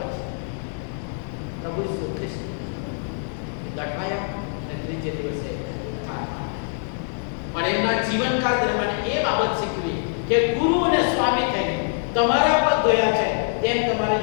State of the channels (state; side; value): silent; right; 62 dB below the other